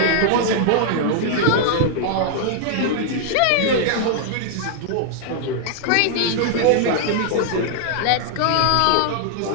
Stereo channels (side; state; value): both; different; correlation -0.01